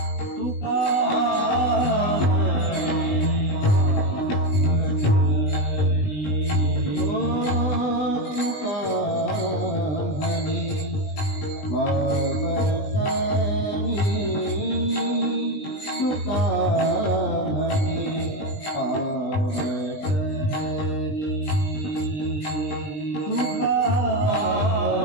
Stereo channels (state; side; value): late; right; 20 ms